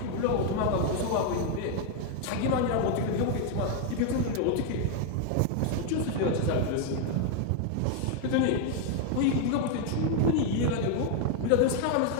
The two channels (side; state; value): both; different; correlation 0.01